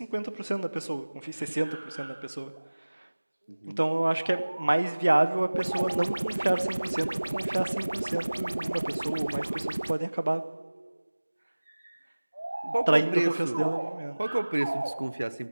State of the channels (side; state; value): both; inverted; correlation -1.00